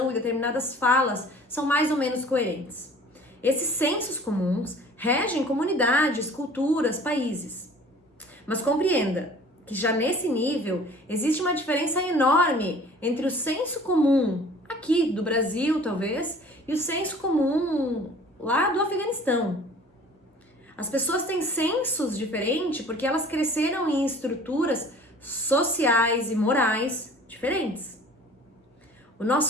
e determinadas falas são mais ou menos coerentes. Esses sensos comuns regem comunidades, culturas, países. Mas compreenda que já nesse nível existe uma diferença enorme entre o senso comum aqui do Brasil, talvez, e o senso comum lá do Afeganistão. As pessoas têm sensos diferentes porque elas cresceram em estruturas sociais e morais diferentes. O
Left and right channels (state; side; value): normal; both; correlation 0.48